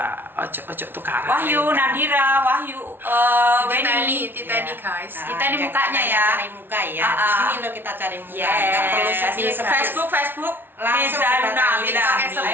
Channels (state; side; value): late; left; 0.10 ms